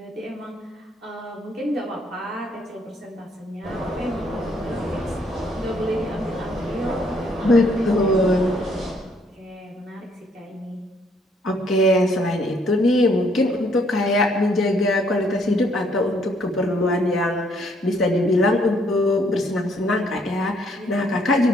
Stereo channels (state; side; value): normal; both; correlation 0.67